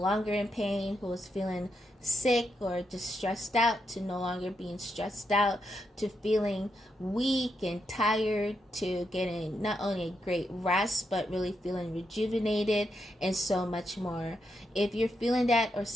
in pain, who was feeling sick or just stressed out to no longer being stressed out, to feeling weak and tired, to getting not only a great rest but really feeling rejuvenated, and so much more. If you're feeling that or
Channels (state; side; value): normal; both; correlation 0.83